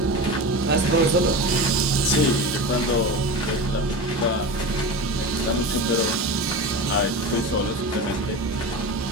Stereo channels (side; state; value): both; normal; correlation 0.27